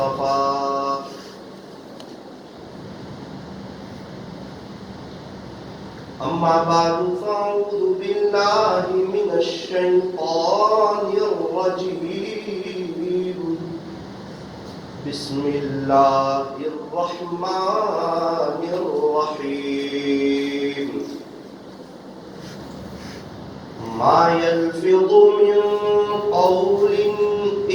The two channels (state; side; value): identical; both; correlation 1.00